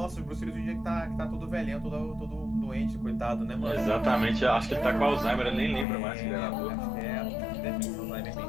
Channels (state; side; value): drops out; right; at 5.9 s